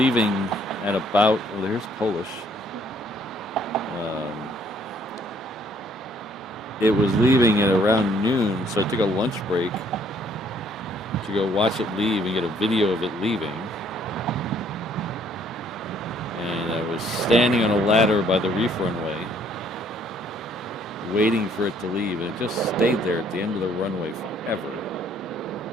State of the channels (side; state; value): both; normal; correlation 0.64